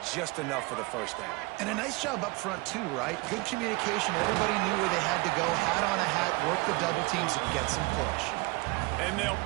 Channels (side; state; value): left; quieter; 24.7 dB